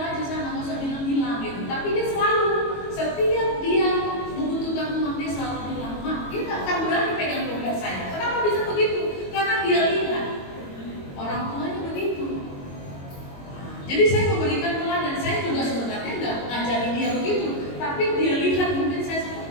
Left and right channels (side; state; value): right; late; 22 ms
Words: aja sana, nggak usah bilang-bilang gitu. Tapi dia selalu, setiap dia membutuhkan uang, dia selalu bilang, Mak, dia nggak akan berani pegang dompet saya. Kenapa bisa begitu? Karena dia lihat orang tuanya begitu. Jadi saya memberikan teladan, saya juga sebenarnya nggak ngajari dia begitu, tapi dia lihat mungkin saya